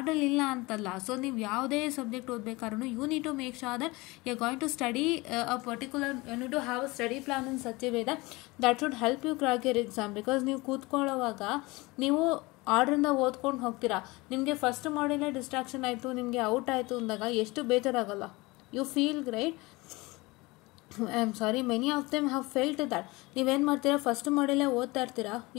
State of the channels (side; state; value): right; quieter; 23.0 dB